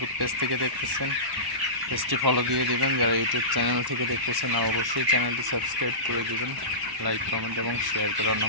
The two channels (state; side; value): late; left; 1.1 ms